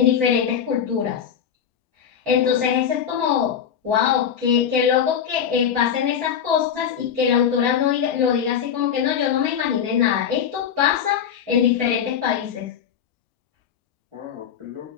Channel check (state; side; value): quieter; right; 8.2 dB